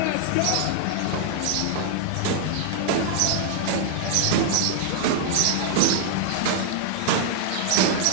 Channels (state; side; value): different; both; correlation -0.01